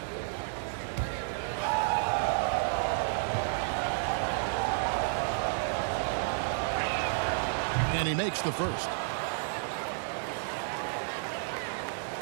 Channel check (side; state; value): left; silent; digital silence